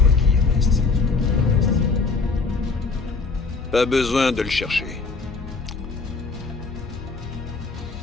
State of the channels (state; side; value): quieter; right; 4.3 dB